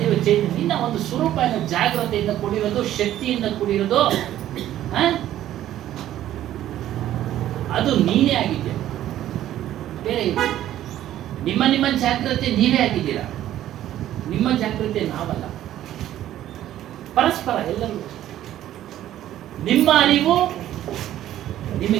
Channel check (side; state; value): left; quieter; 12.6 dB